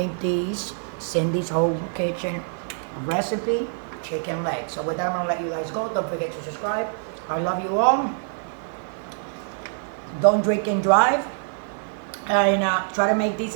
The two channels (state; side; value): silent; left; 62 dB below the other